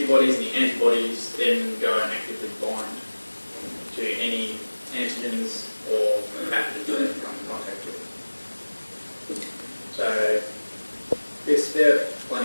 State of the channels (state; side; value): inverted; both; correlation -1.00